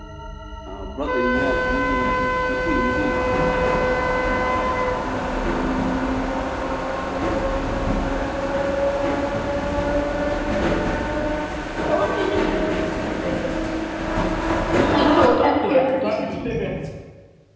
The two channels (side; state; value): both; identical; correlation 1.00